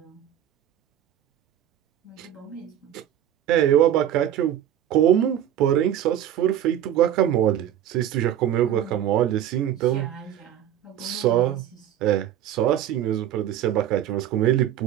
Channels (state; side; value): quieter; left; 11.1 dB